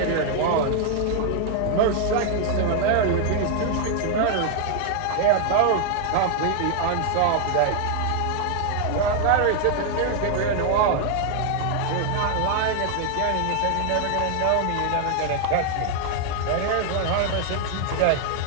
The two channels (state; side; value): different; both; correlation 0.00